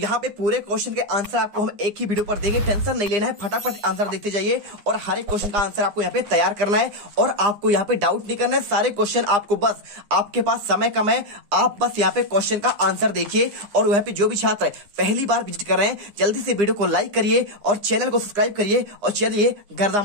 पे पूरे क्वेश्चन के आंसर आपको हम एक ही वीडियो पर देंगे, टेंशन नहीं लेना है, फटाफट आंसर देते जाइए। और हर एक क्वेश्चन का आंसर आपको यहाँ पे तैयार करना है, और आपको यहाँ पे डाउट नहीं करना है। सारे क्वेश्चन आपको, बस आपके पास समय कम है, आप बस यहाँ पे क्वेश्चन का आंसर देखिए। और यहाँ पे जो भी छात्र पहली बार विजिट कर रहे हैं जल्दी से वीडियो को लाइक करिए और चैनल को सब्सक्राइब करिए, और चलिए गर्दा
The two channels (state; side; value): late; left; 9.8 ms